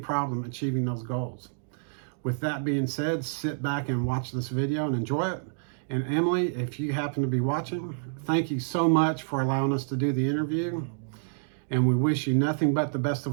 achieving those goals. With that being said, sit back and watch this video and enjoy it. And Emily, if you happen to be watching, thank you so much for allowing us to do the interview. And we wish you nothing but the best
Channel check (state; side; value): silent; left; digital silence